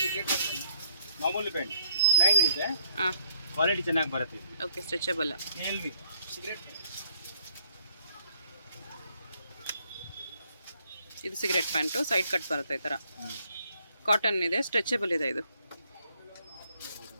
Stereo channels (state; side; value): inverted; both; correlation -0.67